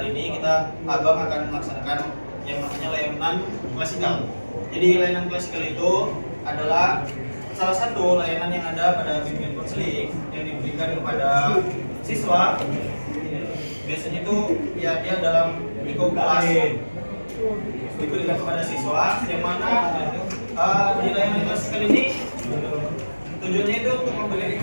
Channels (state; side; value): inverted; both; correlation -1.00